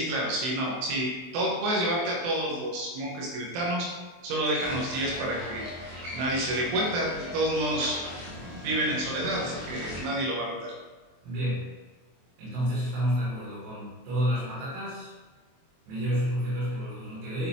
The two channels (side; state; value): left; late; 23 ms